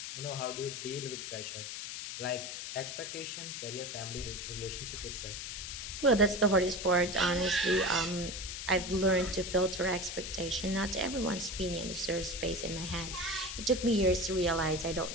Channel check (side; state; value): left; noise; hiss, 7 dB below the sound